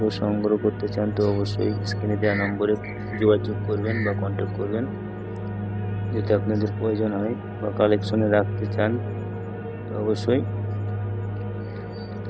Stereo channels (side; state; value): both; identical; correlation 1.00